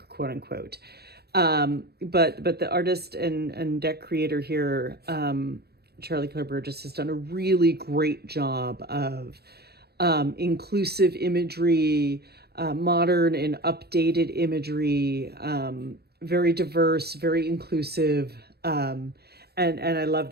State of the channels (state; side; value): late; left; 0.47 ms